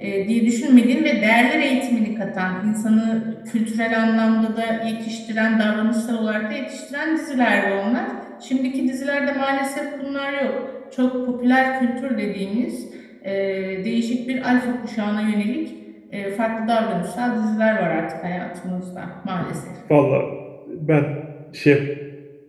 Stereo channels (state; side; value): identical; both; correlation 1.00